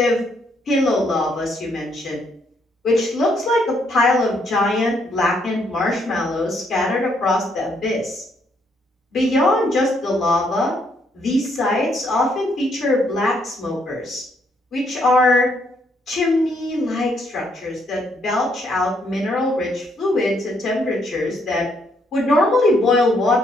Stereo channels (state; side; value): normal; both; correlation 0.72